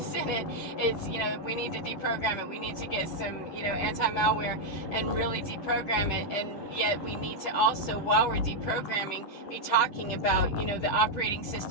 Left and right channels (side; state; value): right; late; 10 ms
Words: in it. It's, we need to deprogram it. We need to get some, anti-malware and really deprogram it. And yet we need to also, while we're deprogramming, be talking about, the operating